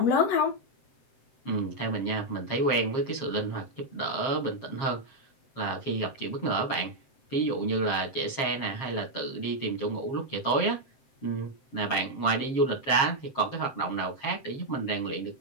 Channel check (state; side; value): late; right; 7.4 ms